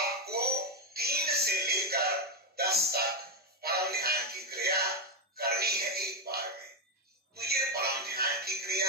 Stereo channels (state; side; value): normal; both; correlation 0.05